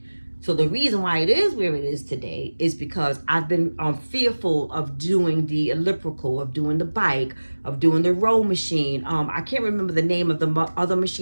So the reason why it is where it is today is because I've been fearful of doing the elliptical, of doing the bike, of doing the row machine. I can't remember the name of the other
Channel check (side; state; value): both; inverted; correlation -1.00